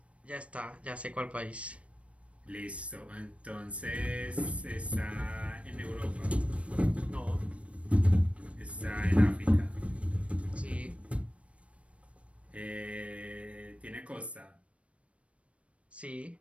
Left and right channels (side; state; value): left; late; 0.062 ms